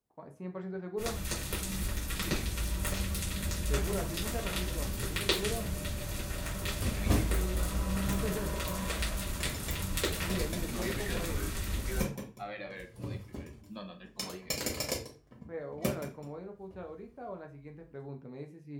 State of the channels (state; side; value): identical; both; correlation 1.00